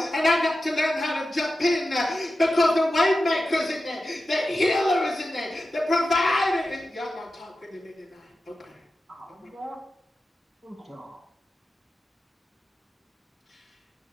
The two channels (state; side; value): normal; both; correlation 0.92